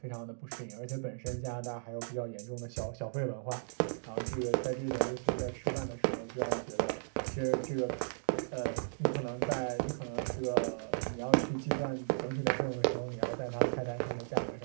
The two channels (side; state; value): left; silent; digital silence